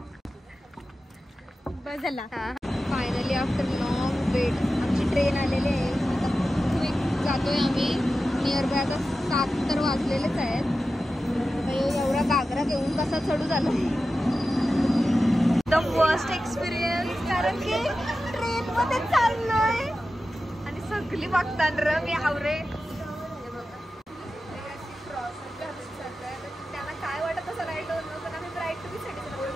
बस झाला. फायनली आफ्टर लॉंग वेट आमची ट्रेन आलेली आहे. आता क्विक जातोय आम्ही. नियर बाय आता 7 तर वाजलेलेच आहेत. एवढा घागरा घेऊन कसा चढू झाला. द फर्स्ट एक्सपिरियन्स, कारण की ट्रेन मध्ये चाललोय आणि सगळी बघतात र मी आवरे. त्यांना काय वाटत असं नाही डोन, पण आम्ही ब्राईड टू बी साठी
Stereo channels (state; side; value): normal; both; correlation 0.93